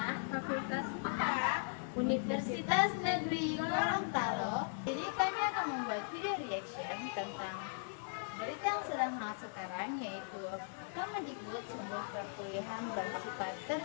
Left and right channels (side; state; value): right; silent; 52 dB below the other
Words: Fakultas IPA, Universitas Negeri Gorontalo. Jadi kami akan membuat video reaction tentang berita yang sedang hangat sekarang, yaitu Kemendikbud sebuah perkuliahan bersifat